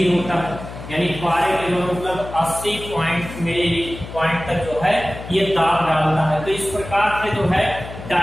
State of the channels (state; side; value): noise; left; hum, 12 dB below the sound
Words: होता है। यानी पारे के जो मतलब 80 पॉइंट तक जो है ये दाब डालता है। तो इस प्रकार से जो है